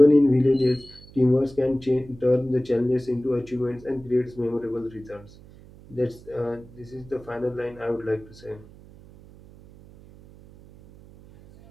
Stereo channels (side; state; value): right; noise; hum, 22 dB below the sound